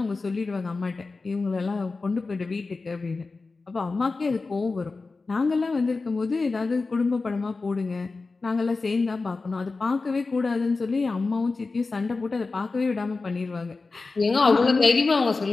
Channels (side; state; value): right; quieter; 3.9 dB